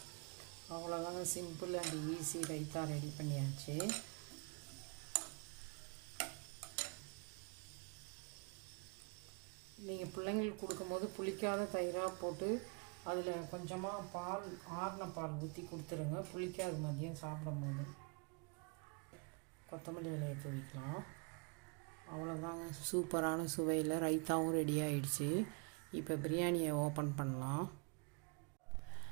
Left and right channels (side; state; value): left; quieter; 33.6 dB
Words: அவ்வளோதாங்க, simple and easy raita ready பண்ணியாச்சு. நீங்கள் பிள்ளைங்களுக்கு கொடுக்கும்போது புளிக்காத தயிராக போட்டு அதில் கொஞ்சமாக பால், ஆறின பால் ஊற்றி கொடுத்துருங்க. புளிக்காது மதியம் சாப்பிடும்போது. கொத்தமல்லி இலையை தூவிக்கலாம். அவ்வளோதாங்க, சூப்பரான சுவையில் ரைத்தாவும் ரெடி ஆகிடுச்சு. இப்போ பிரியாணியை ஓப்பன் பண்ணலாம்.